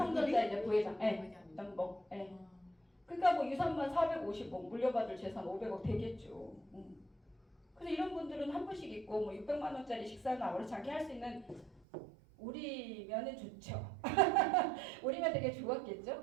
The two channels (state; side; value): drops out; left; at 11.9 s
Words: 이제 부회장. 예. 연봉. 예. 그러니까 뭐 유산만 450억 물려받을 재산 500억 되겠죠. 그래서 이런 분들은 한 분씩 있고 뭐 600만 원짜리 식사는 아무렇지 않게 할 수 있는 우리면은 좋죠. 우리면 되게